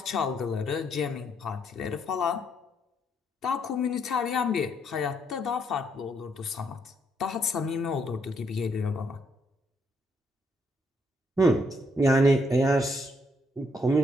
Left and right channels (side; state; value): both; normal; correlation 0.73